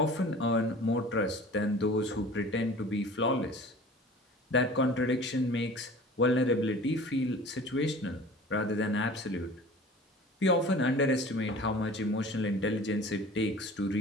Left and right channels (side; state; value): both; normal; correlation 0.42